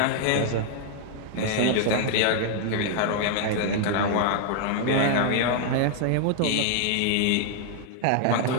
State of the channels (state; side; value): different; both; correlation 0.00